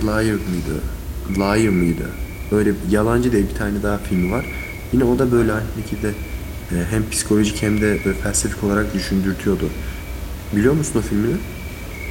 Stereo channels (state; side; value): identical; both; correlation 1.00